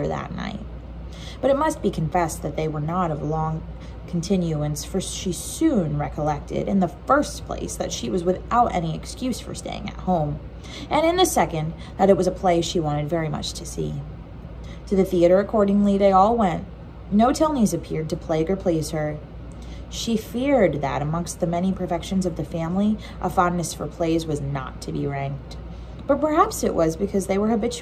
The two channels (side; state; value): both; identical; correlation 1.00